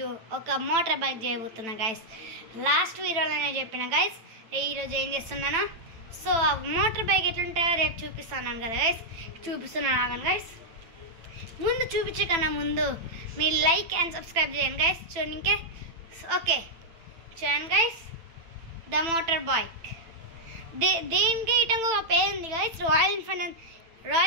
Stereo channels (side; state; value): left; late; 9.0 ms